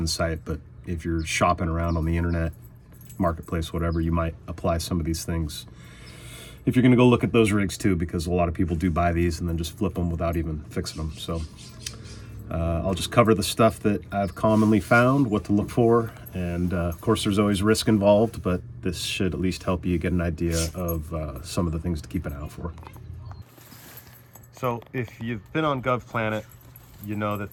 site, but if you're shopping around on the internet, marketplace, whatever, you might apply some of these things if you're going to go look at those rigs too, because a lot of people do buy these and then just flip them without even fixing them. So I'll just cover the stuff that I've commonly found, what to look for, and of course there's always risk involved, but this should at least help you get an idea of some of the things to keep an eye out for. So if you've been on GovPlanet, you know that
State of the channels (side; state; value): both; identical; correlation 1.00